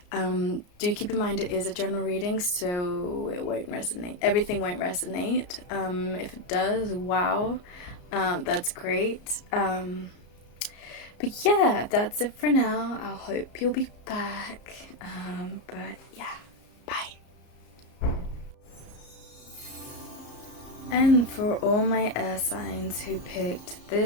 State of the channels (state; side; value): late; right; 34 ms